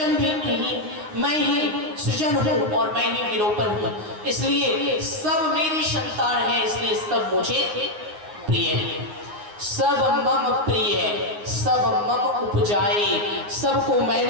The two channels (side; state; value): left; late; 9.6 ms